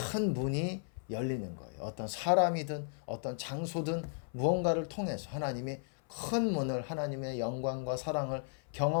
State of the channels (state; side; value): silent; right; 54 dB below the other